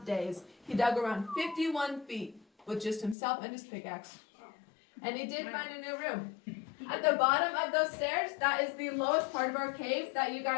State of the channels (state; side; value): drops out; right; at 3.2 s